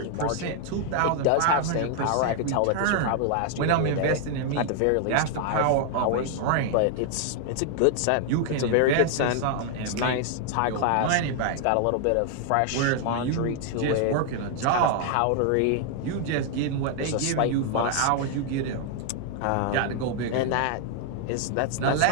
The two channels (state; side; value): different; both; correlation 0.00